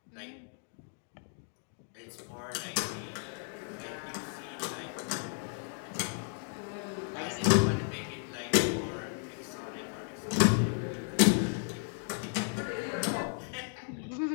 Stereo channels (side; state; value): right; silent; 55 dB below the other